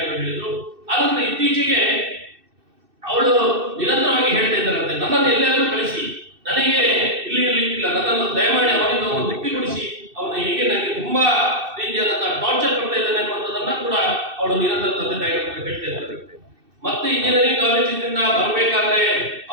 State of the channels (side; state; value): left; late; 2.6 ms